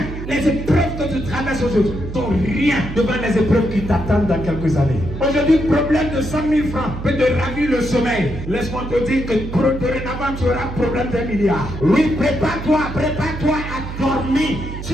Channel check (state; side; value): noise; right; hum, 8 dB below the sound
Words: Les épreuves que tu traverses aujourd'hui sont rien devant les épreuves qui t'attendent dans quelques années. Aujourd'hui, le problème de 100 000 francs peut te ravir le sommeil. Laisse-moi te dire que dorénavant tu auras un problème d'1 milliard. Oui, prépare-toi à dormir. Si